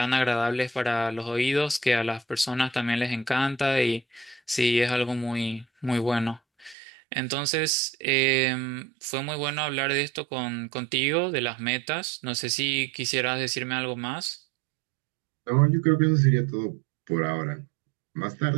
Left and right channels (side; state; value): left; drops out; at 6.8 s